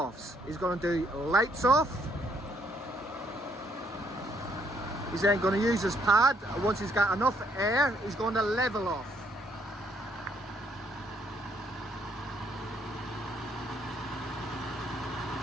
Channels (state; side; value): normal; both; correlation 0.70